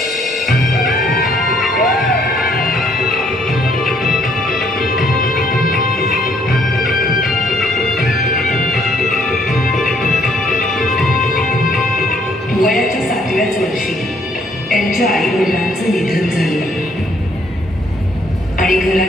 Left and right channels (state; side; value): normal; both; correlation 0.66